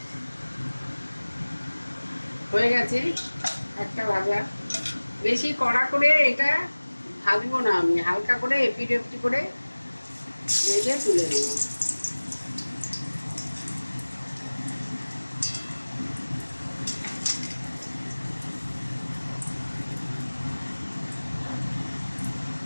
হয়ে গেছে একটা ভাজা। বেশি কড়া করে এটা ভাজবো না, আমি হালকা করে এপিট ওপিট করে ভেজে তুলে নেব।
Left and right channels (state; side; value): inverted; both; correlation -1.00